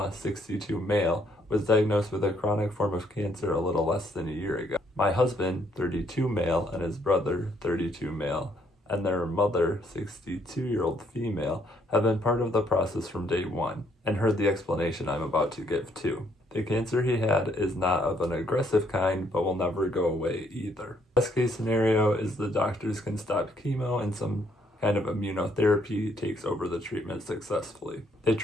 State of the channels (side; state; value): both; normal; correlation 0.69